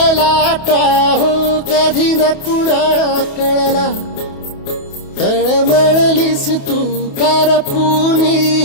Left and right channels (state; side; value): late; right; 28 ms